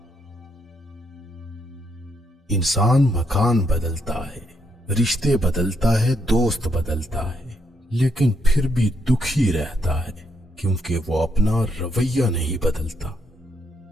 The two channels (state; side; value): normal; both; correlation 0.76